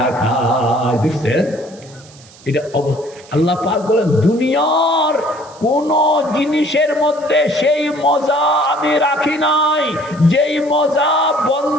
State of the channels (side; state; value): right; noise; hiss, 24 dB below the sound